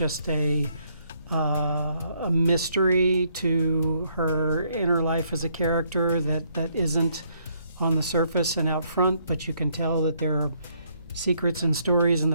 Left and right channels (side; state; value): both; inverted; correlation -0.69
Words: a mystery to her inner life as a character that isn't on the surface and out front, but you can tell that there are secrets and stories in